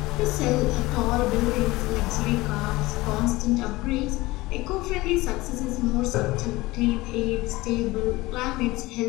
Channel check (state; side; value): quieter; right; 20.0 dB